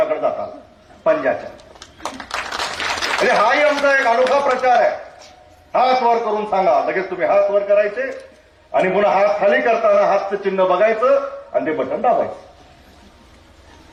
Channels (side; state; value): both; identical; correlation 1.00